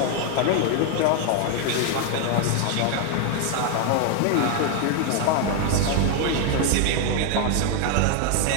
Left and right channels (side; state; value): both; different; correlation 0.01